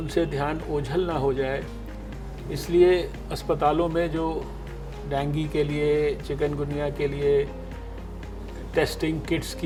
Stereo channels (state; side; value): identical; both; correlation 1.00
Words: ध्यान ओझल ना हो जाए, इसलिए अस्पतालों में जो डेंगू के लिए, चिकनगुनिया के लिए टेस्टिंग किट्स